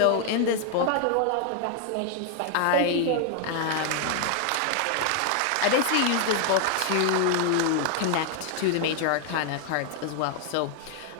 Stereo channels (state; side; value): different; both; correlation 0.00